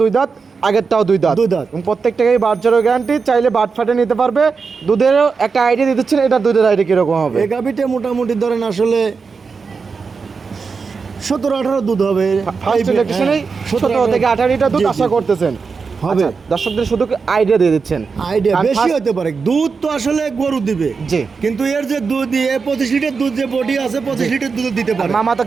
2 দাঁত, আগেরটাও 2 দাঁত। 2 দাঁত। এবং প্রত্যেকটাকেই বাট জড়ো গ্যারান্টি, চাইলে বাট ফাটে নিতে পারবে। দুধেরও একটা আইডিয়া দিয়ে দিচ্ছেন, এটা দুধের আইডিয়া কিরকম হবে? এই গাভিটা মোটামুটি ধরেন আসলে 17-18 দুধ হবে। ফার্স্ট ইলেকশনেই 17 থেকে 18 লিটার দুধ জি, জি, আশা জি। করতেছেন? হবে। আচ্ছা, দর্শকদের শুধু আইডিয়া দিয়ে দিচ্ছেন। আইডিয়া আর বেশি first- হতে পারে, দুধ তো আসলে গরু দিবে। জি। কিন্তু এর যে দুধ দিয়ে 25 লিটার দুধ, যে বডি আছে 25 লিটার দুধ দিতে আর পারে। মামা তো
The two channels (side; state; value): left; quieter; 5.1 dB